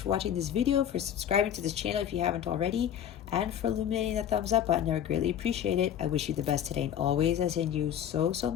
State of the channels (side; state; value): right; quieter; 9.8 dB